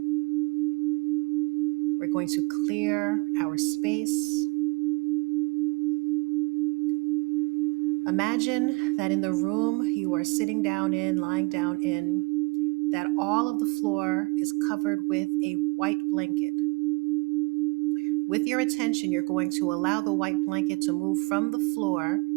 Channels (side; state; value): left; quieter; 30.2 dB